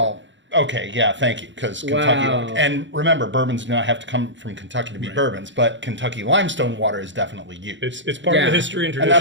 okay, yeah, thank you, because Kentucky. Wow. And remember, bourbons do not have to come from Kentucky to be bourbons, but Kentucky limestone water is definitely used. it's part of Yeah. the history and And tradition.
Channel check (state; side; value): late; left; 0.54 ms